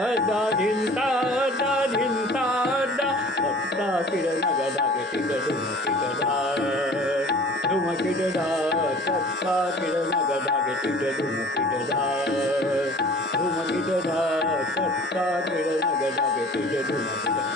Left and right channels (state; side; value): normal; both; correlation 0.46